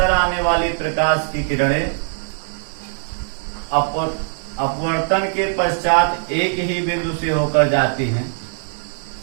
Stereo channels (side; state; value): left; silent; digital silence